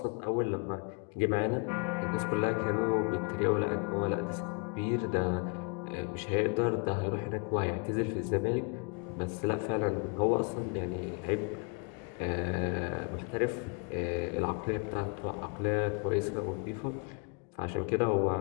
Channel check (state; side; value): quieter; right; 34.8 dB